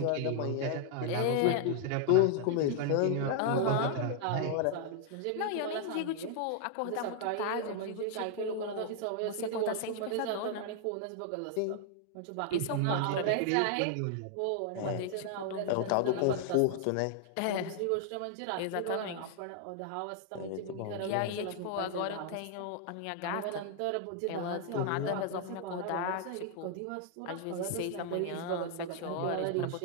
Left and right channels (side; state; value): both; different; correlation 0.00